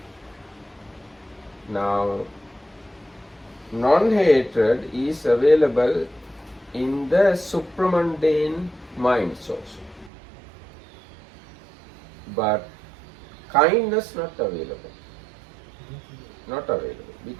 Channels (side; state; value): left; drops out; at 10.1 s